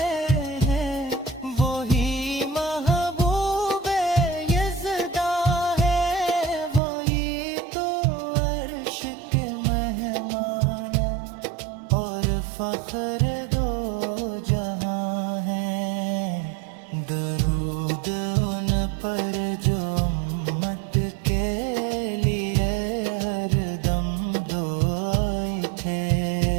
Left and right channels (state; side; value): drops out; left; at 6.8 s